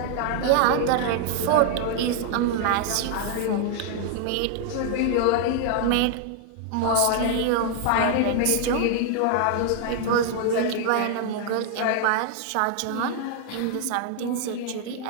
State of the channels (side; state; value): both; different; correlation 0.00